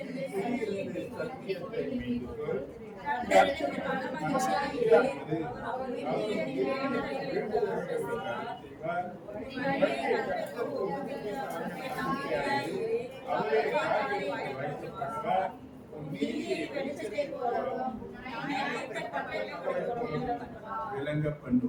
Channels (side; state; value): both; identical; correlation 1.00